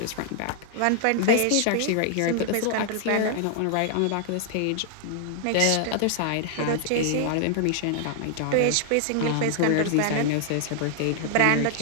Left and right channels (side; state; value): both; different; correlation -0.01